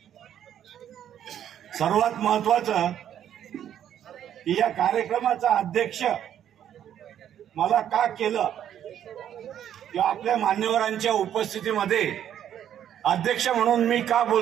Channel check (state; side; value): quieter; left; 10.2 dB